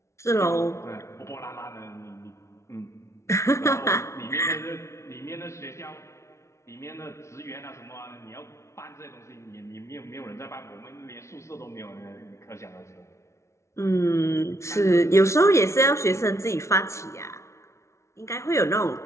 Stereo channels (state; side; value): late; right; 0.13 ms